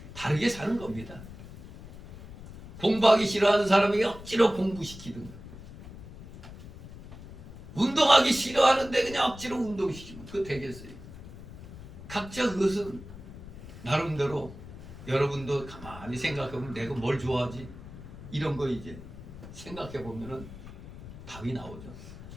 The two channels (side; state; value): left; noise; rumble, 14 dB below the sound